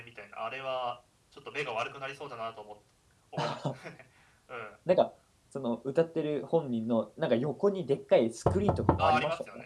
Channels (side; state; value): both; identical; correlation 1.00